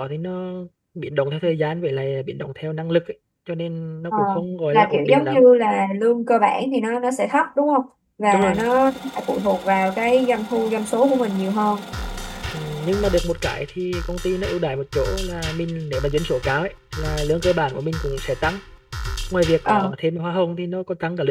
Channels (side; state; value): both; identical; correlation 1.00